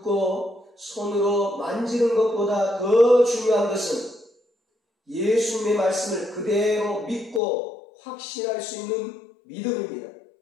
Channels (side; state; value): right; drops out; at 7.4 s